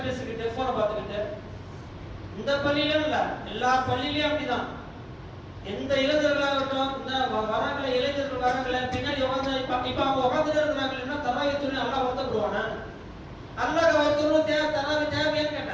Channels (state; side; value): identical; both; correlation 1.00